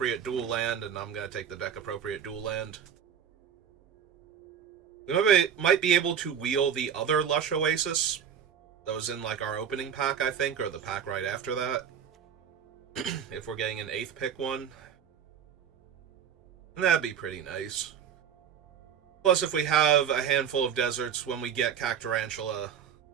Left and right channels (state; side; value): quieter; left; 8.2 dB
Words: dual land, and I'm going to take the deck-appropriate dual land. We might be able to wheel the other Lush Oasis. That was in, like, our opening pack, I think, or the pack right after that. If we're getting an 8th pick one. And that'd be pretty nice. Plus, if we have a handful of deserts when we get Cactarantula,